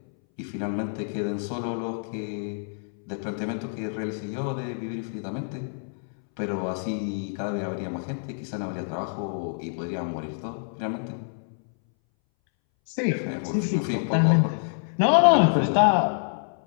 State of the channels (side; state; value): right; silent; 60 dB below the other